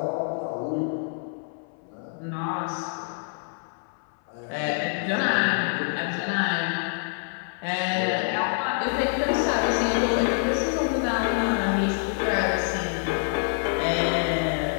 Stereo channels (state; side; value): silent; right; 61 dB below the other